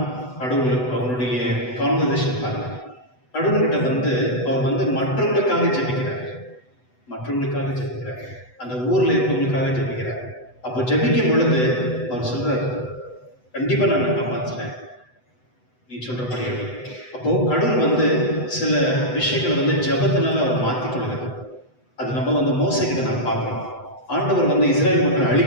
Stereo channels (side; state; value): right; late; 8.0 ms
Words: கடவுள் அவனுடைய கான்வர்சேஷன் பாருங்க. கடவுள்கிட்ட வந்து அவர் வந்து மற்றவங்களுக்காக ஜெபிக்கிறார், மற்றவங்களுக்காக ஜெபிக்கிறார், அந்த ஊரில் இருக்கவங்களுக்காக ஜெபிக்கிறார். அப்போ ஜெபிக்கும் பொழுது அவர் சொல்கிறார், கண்டிப்பாக நான் காப்பாற்றுறேன், நீ சொல்கிறபடியே. அப்போது கடவுள் வந்து சில விஷயங்களை வந்து ஜெபத்தினால அவர் மாற்றிக்கொள்கிறார். அது நம்ம வந்து மோசைக்கிட்ட நான் பார்க்குறோம். ஆண்டவர் வந்து இஸ்ரேல் மக்களை